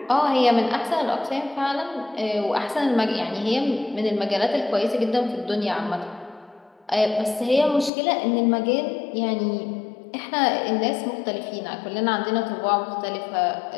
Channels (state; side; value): drops out; right; at 7.9 s